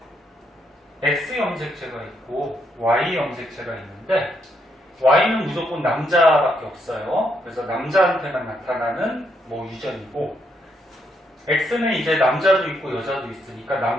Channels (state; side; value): normal; both; correlation 0.77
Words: X염색체가 있고 Y염색체가 있는데 Y는 무조건 남자밖에 없어요. 그래서 남자한테만 나타나는 뭐 유전이고, X는 이제 남자도 있고 여자도 있으니까